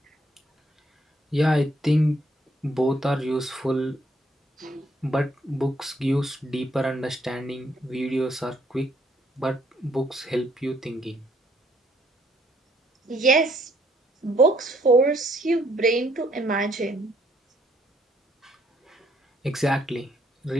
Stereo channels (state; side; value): normal; both; correlation 0.68